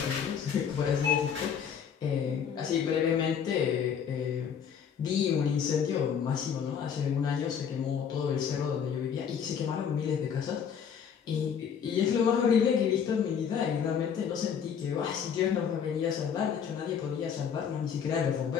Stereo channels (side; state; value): right; quieter; 7.6 dB